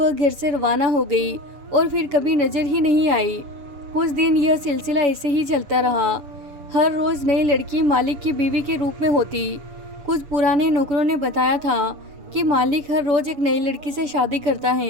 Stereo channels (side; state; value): left; late; 7.0 ms